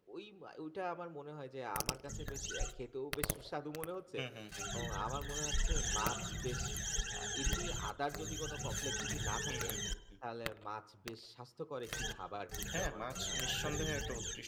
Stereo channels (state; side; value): identical; both; correlation 1.00